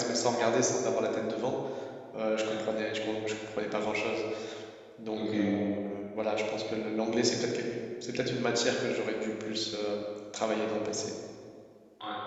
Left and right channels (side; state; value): both; identical; correlation 1.00